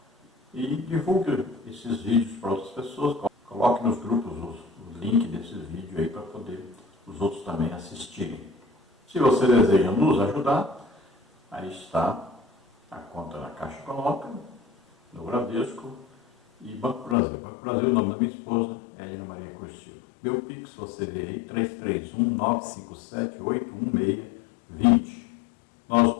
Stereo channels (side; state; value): right; drops out; at 17.2 s